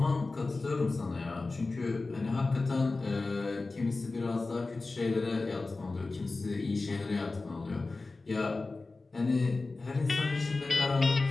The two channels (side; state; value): right; quieter; 3.5 dB